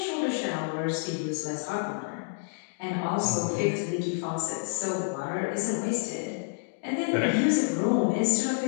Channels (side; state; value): right; silent; digital silence